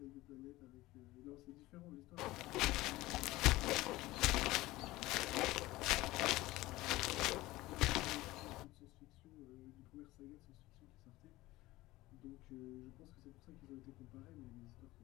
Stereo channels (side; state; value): right; quieter; 18.5 dB